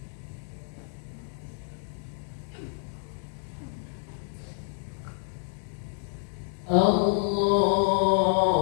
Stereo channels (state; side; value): silent; right; digital silence